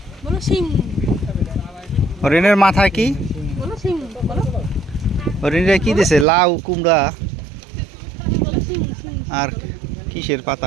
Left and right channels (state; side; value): drops out; left; at 6.2 s